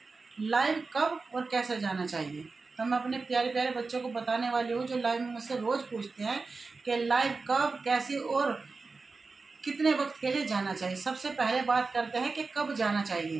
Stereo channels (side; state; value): left; quieter; 4.1 dB